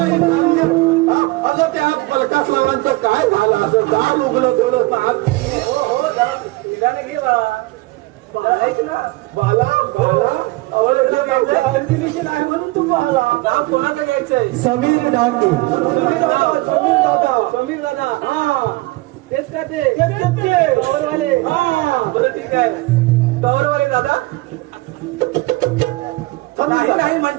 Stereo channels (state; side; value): quieter; left; 21.2 dB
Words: अगं त्या पलकास लावांचं काय झालं असं. दार उघडं ठेवलं हो जरा निदान घे बाळा. ऐक ना बाला नाही म्हणून तू बाला. नाव कोणाचं घ्यायचंय. समीर डांगे. समीर दादा हा तेच का ते टॉवरवाले. बरं ठीक आहे टॉवरवाले दादा. नाही